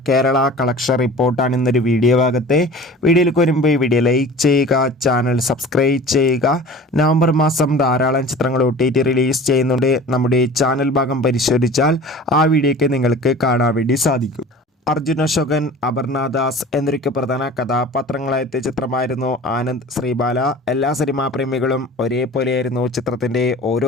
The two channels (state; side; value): normal; both; correlation 0.40